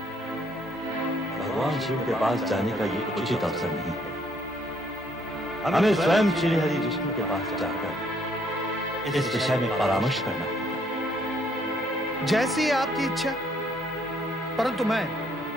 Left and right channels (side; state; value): both; normal; correlation 0.67